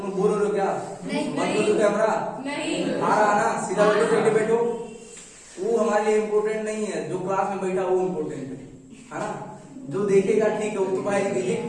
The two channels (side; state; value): both; identical; correlation 1.00